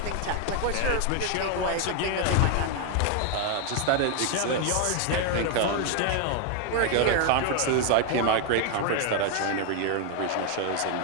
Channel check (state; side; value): different; both; correlation 0.01